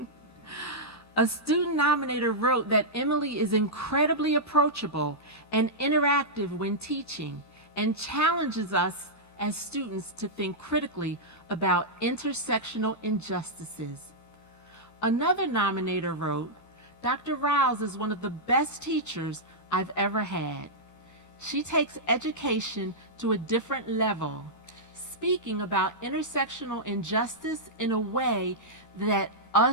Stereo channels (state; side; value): late; right; 13 ms